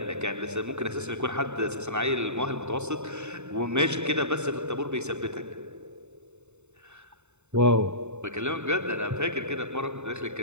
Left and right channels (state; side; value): late; left; 0.82 ms